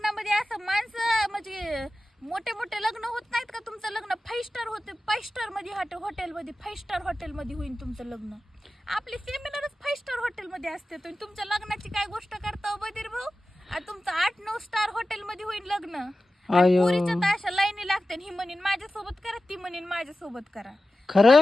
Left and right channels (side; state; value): both; normal; correlation 0.94